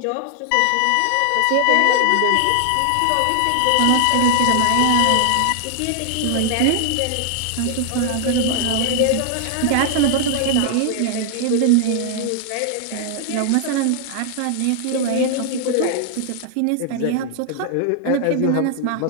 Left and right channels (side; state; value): both; different; correlation 0.00